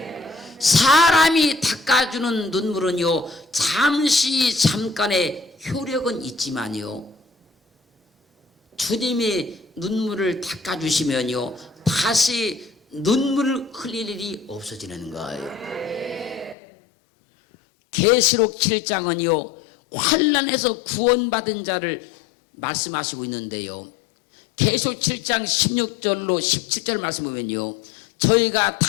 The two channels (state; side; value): drops out; right; at 16.6 s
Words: 사람이 닦아주는 눈물은요, 잠깐의 효력은 있지만요, 주님이 눈물을 닦아주시면요, 다시 눈물을 흘릴 일이 없어지는 거예요. 계시록 7장은요, 환난에서 구원받은 자를 말씀하시고 있는데요, 계시록 7장 16절로 17절 말씀 보면요, 저희가